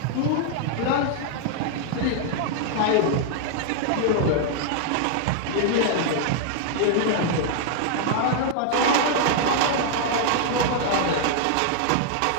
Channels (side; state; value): both; different; correlation -0.01